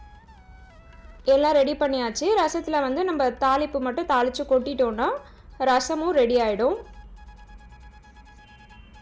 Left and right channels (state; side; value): identical; both; correlation 1.00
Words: எல்லாம் ரெடி பண்ணியாச்சு. ரசத்தில் வந்து நம்ம தாளிப்பு மட்டும் தாளித்து கொட்டிட்டோன்னா ரசமும் ரெடி ஆகிடும்.